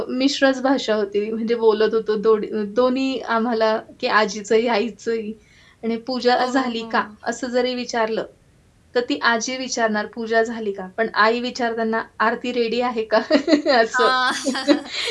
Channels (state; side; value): identical; both; correlation 1.00